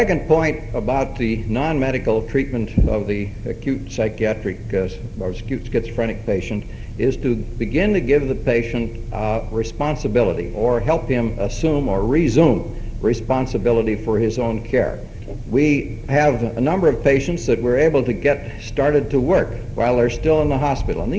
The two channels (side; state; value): both; identical; correlation 1.00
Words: point about the non-medical treatment of the acute psychiatric or acute schizophrenic patient is to begin to give the patient responsibility, or help him assume or resume responsibility for his own care. We have a number of patients that we're able to get started to work while they're still in the hospital. And